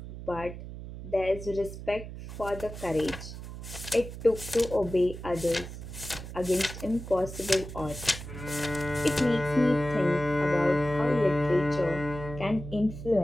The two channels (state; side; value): noise; right; hum, 11 dB below the sound